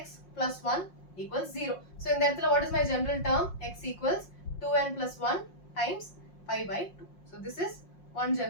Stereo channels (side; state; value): right; late; 5.6 ms